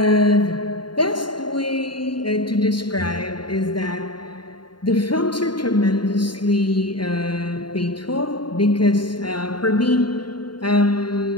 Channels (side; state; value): right; late; 0.71 ms